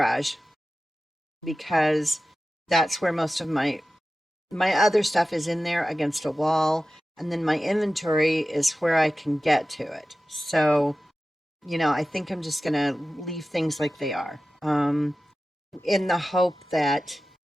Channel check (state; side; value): normal; both; correlation 0.95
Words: because that's where most of my other stuff is, in there against a wall, and then my inventory is where I can get to it. So, I think I'm just going to leave things like they are, in the hope that